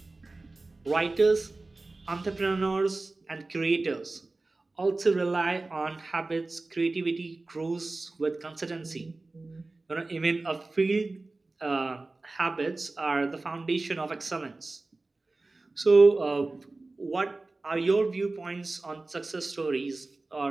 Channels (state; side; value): quieter; left; 3.3 dB